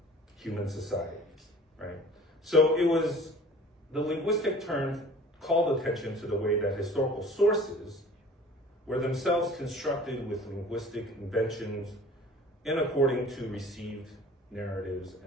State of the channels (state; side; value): normal; both; correlation 0.46